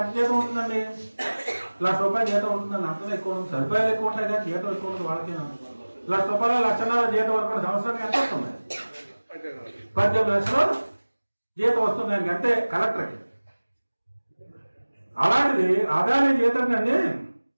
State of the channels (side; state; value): both; inverted; correlation -1.00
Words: ఎంత జీతం ఉంటుందండి? ₹1,00,000 జీతం ఉంటుందండి. అంతలో ఎక్కువ ఉంటుంది. సరిపోయాలు ఎక్కువ ఉంటాయి కానీ జీతం ఎక్కువ ఉంటుంది వాళ్ళకి. ₹1,00,000 1,50,000 జీతం అనుకోండి. సంవత్సరానికి ఎంత వస్తుంది? 18 లక్షలు జీతం వస్తుంది ఆయనకి, అంతే కలెక్టర్కి. అలాంటిది అదాని జీతం అండి